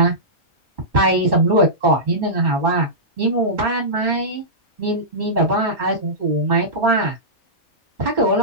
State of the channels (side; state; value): both; normal; correlation -0.16